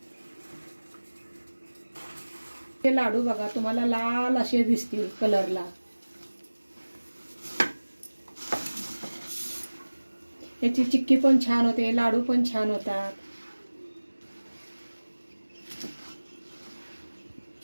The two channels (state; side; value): inverted; both; correlation -1.00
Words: हे लाडू बघा तुम्हाला लाल असे दिसतील कलरला. याची चिक्की पण छान होते, लाडू पण छान होतात.